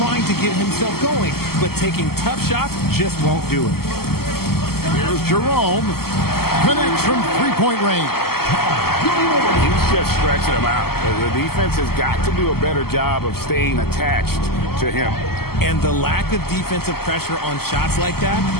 to get himself going, but taking tough shots just won't do it. Here's Jerome. Connects from 3-point range. He's just stretching him out. The defense has got to do a better job of staying attached to him. And the lack of defensive pressure on shots like that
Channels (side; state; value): right; late; 0.95 ms